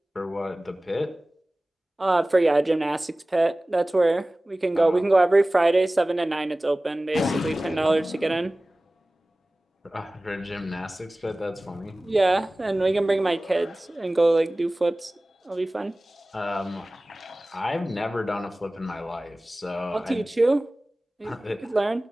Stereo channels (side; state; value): both; normal; correlation 0.98